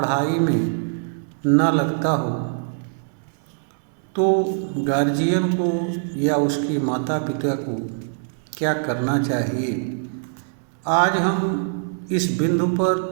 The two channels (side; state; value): left; silent; 64 dB below the other